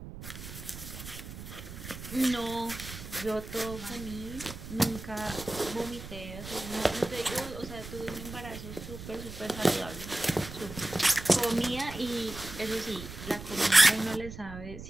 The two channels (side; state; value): right; noise; rumble, 11 dB below the sound